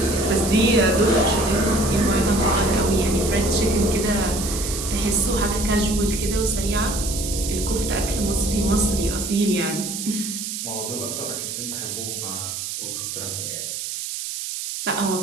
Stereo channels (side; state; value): right; noise; hiss, 5 dB below the sound